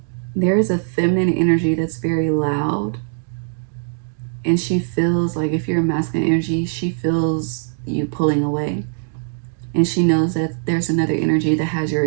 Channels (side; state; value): left; silent; digital silence